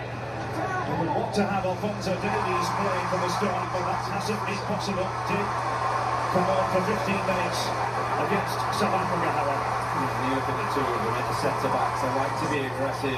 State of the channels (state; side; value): identical; both; correlation 1.00